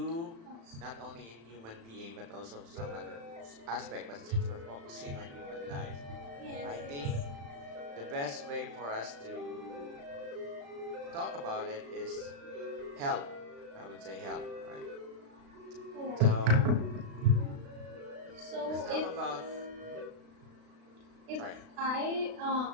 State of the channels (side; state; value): left; late; 36 ms